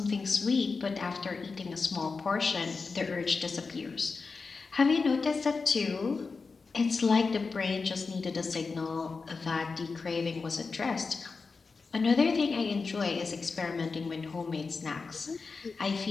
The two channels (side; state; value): right; quieter; 4.5 dB